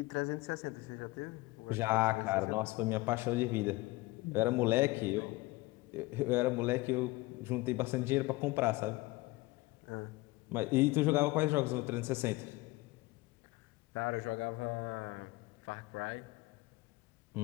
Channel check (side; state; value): right; quieter; 21.2 dB